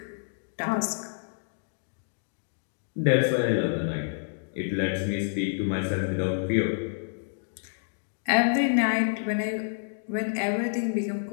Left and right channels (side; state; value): right; silent; digital silence